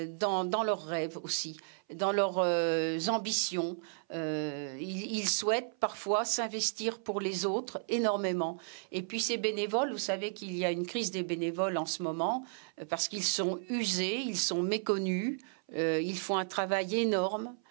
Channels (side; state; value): left; silent; 55 dB below the other